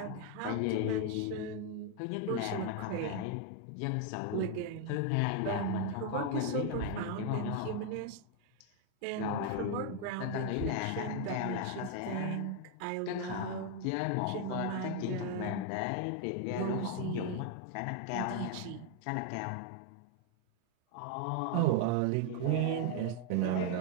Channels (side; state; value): both; different; correlation 0.00